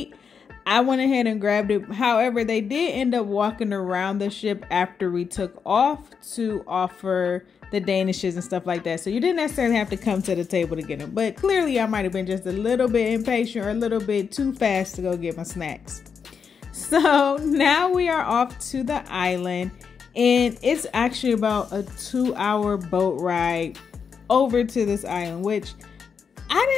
I went ahead and grabbed it. However, they did end up walking around the ship after we took off to offer the danishes and stuff like that. So you didn't necessarily have to come to the table to get them. But clearly I might have been just a little bit impatient or a little bit too fast to go get my snacks. So now we are off to the island, and it's actually about a 2-hour boat ride over to this island, which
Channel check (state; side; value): quieter; right; 6.3 dB